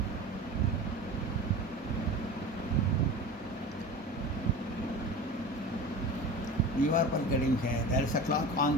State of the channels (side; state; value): both; normal; correlation 0.33